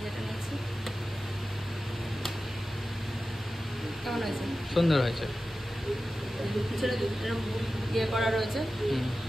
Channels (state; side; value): normal; both; correlation 0.94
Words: যেটা নিয়েছি কেমন হয়েছে? সুন্দর হয়েছে, পিছনে ইয়ে করা রয়েছে,